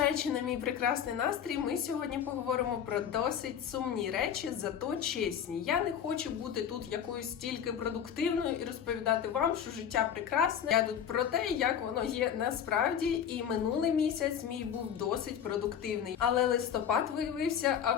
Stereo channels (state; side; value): quieter; right; 8.6 dB